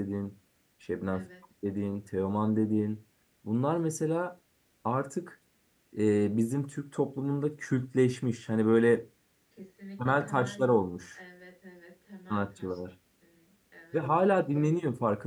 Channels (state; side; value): identical; both; correlation 1.00